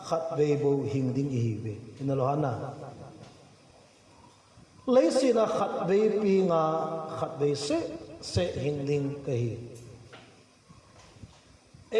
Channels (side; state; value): both; identical; correlation 1.00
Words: khát về bộ hình đinh ý về nên là hana lấy xin là khát về pinga khát về sẽ hình đinh cái